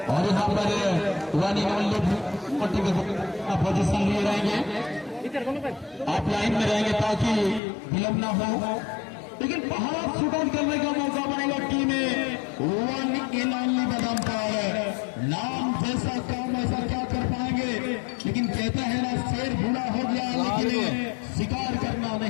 और यहाँ पर पोजीशन लिए रहेंगे, आप लाइन में रहेंगे ताकि विलंब ना हो। लेकिन पहाड़ शुरू करने का मौका बनेगा टीम में वन इन ओनली बदम पर। नाम जैसा काम ऐसा क्या कर पाएंगे, लेकिन कहता है ना शेर बूढ़ा हो गया लेकिन शिकार करना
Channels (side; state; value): right; drops out; at 7.6 s